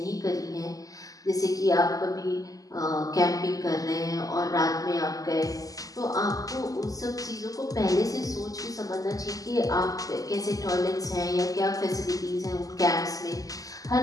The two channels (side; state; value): right; late; 0.17 ms